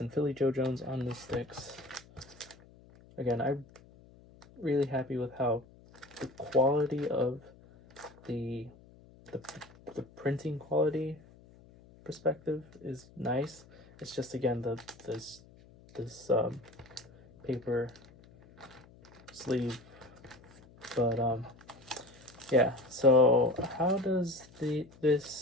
Philly Joe Jones on the sticks. Again, I'm really happy with how the quality of the printing quality perspective is nice. It's just, again, this paper sleeve. But yeah, so how does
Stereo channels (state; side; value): noise; left; hum, 24 dB below the sound